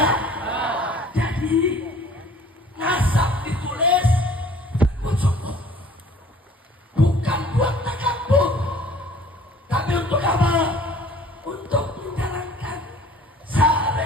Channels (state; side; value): normal; both; correlation 0.51